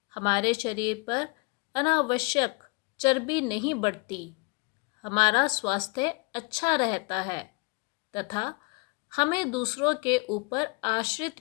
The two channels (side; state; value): right; quieter; 28.7 dB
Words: हमारे शरीर पर अनावश्यक चर्बी नहीं बढ़ती। हमारा स्वास्थ्य अच्छा रहता है तथा हमें दूसरों के ऊपर